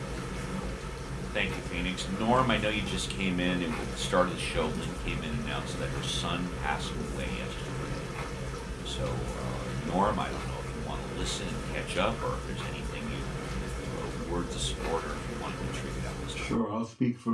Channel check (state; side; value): identical; both; correlation 1.00